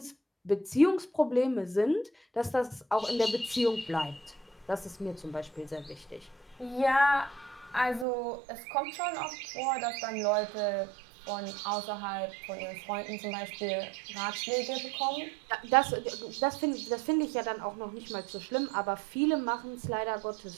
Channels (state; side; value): drops out; left; at 8.1 s